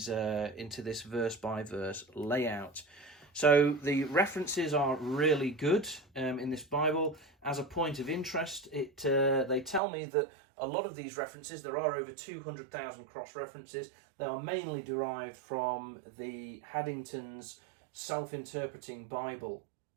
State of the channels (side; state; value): left; drops out; at 9.8 s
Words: verse by verse layout. So the references are really good in this Bible. As a point of interest, they tell me that a lot of these references, there are over 200,000 cross-references, they are mainly derived from the Haddington's Self-Interpreting Bible.